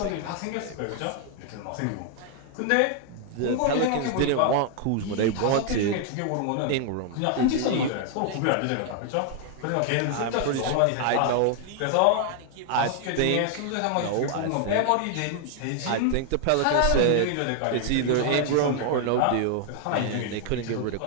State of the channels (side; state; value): both; different; correlation 0.00